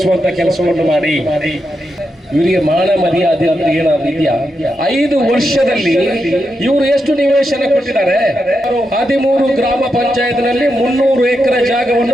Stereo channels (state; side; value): normal; both; correlation 0.85